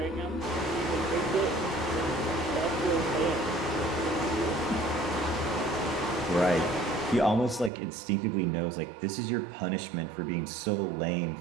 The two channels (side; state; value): left; drops out; at 7.7 s